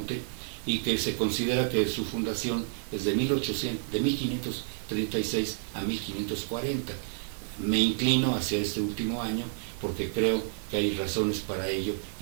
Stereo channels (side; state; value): left; silent; digital silence